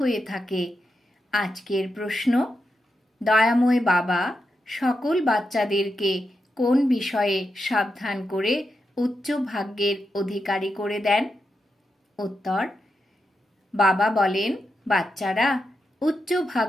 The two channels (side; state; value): both; normal; correlation 0.86